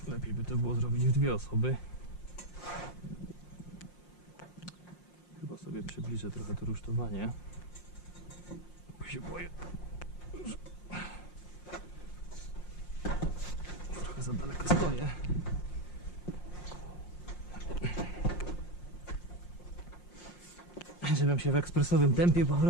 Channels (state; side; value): late; right; 5.6 ms